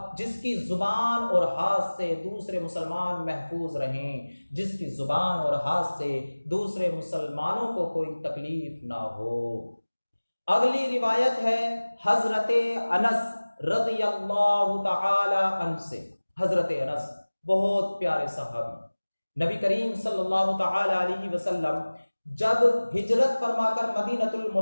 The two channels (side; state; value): both; inverted; correlation -1.00